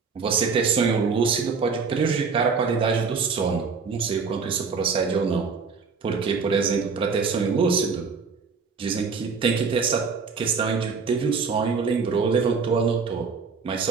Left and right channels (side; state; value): left; quieter; 5.2 dB